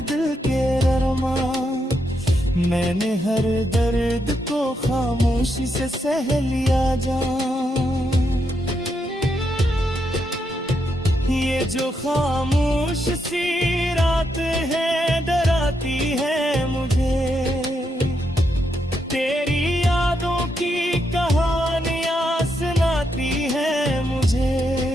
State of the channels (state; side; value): normal; both; correlation 0.81